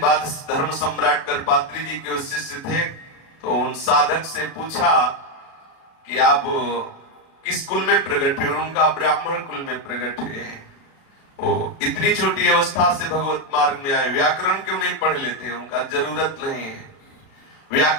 धर्म सम्राट करपात्री जी के शिष्य थे, तो उन साधक से पूछा कि आप किस कुल में प्रकट हुए? उनका ब्राह्मण कुल में प्रकट हुए। वो इतनी छोटी अवस्था से भगवत मार्ग में आए, व्याकरण क्यों नहीं पढ़ लेते? उनका जरूरत नहीं है,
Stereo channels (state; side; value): late; right; 36 ms